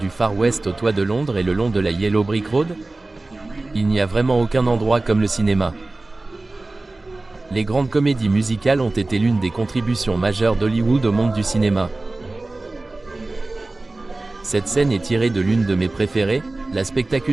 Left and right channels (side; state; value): left; quieter; 3.0 dB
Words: Far West au toit de Londres et le long de la Yellow Brick Road? Il n'y a vraiment aucun endroit comme le cinéma. Les grandes comédies musicales ont été l'une des contributions majeures d'Hollywood au monde du cinéma. Cette scène est tirée de l'une de mes préférées, la